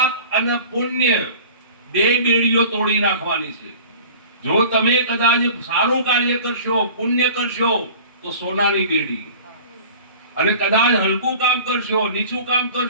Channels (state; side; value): inverted; both; correlation -0.43